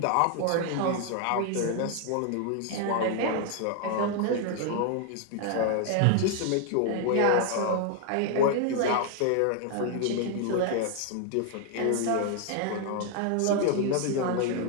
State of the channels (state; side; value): different; both; correlation 0.00